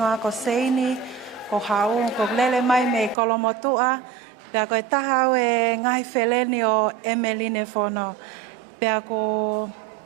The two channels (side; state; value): left; drops out; at 3.2 s